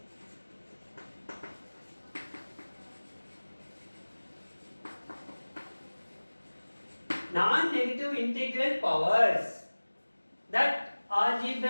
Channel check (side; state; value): both; inverted; correlation -1.00